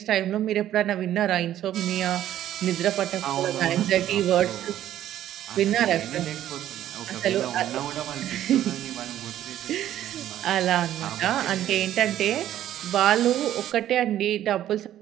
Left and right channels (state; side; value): quieter; left; 12.1 dB